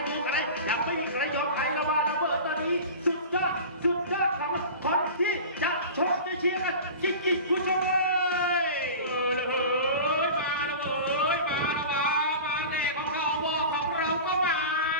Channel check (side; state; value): both; inverted; correlation -0.34